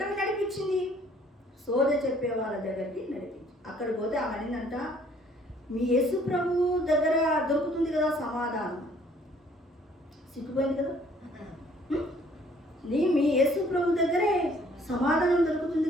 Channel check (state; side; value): normal; both; correlation 0.60